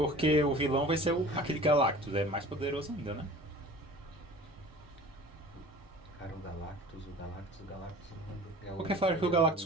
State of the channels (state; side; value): normal; both; correlation 0.42